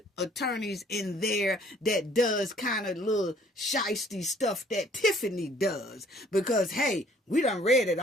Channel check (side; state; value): both; normal; correlation 0.58